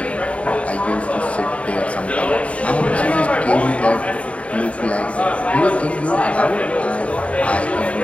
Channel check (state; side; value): late; right; 0.064 ms